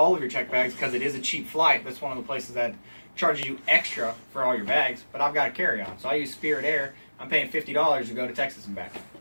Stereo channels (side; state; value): both; inverted; correlation -1.00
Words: of your check bags because it is a cheap flight. That's one of the places that charges you extra for all your bags. But I've got a carry-on, so I use Spirit Air. I'm paying $50 to go to Texas and back.